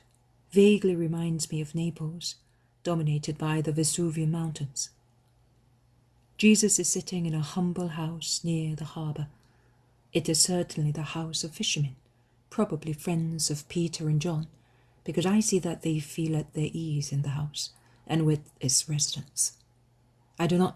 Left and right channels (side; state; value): both; identical; correlation 1.00